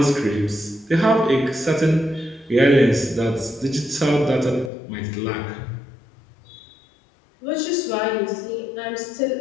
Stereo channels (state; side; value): drops out; right; at 4.7 s